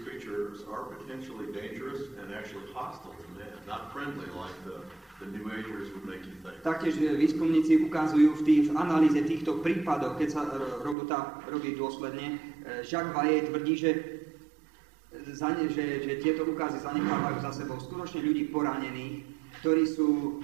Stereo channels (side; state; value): left; drops out; at 11.0 s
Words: creatures are potentially dangerous and actually hostile to man, not friendly like the New Agers would make you think. Taktiež výskumníci ukazujú v analýze týchto prípadov, keď sa robota robí dôsledne, Jacques Vallée tvrdí, že tieto ukázy zanechávajú za sebou skutočne ľudí poranených, ktorí sú